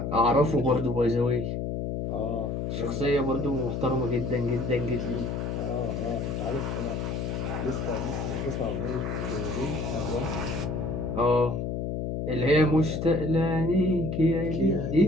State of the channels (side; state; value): left; noise; hum, 2 dB below the sound